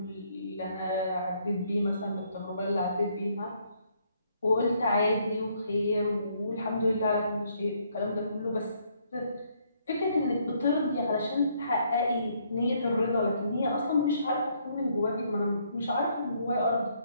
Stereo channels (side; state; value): both; inverted; correlation -0.70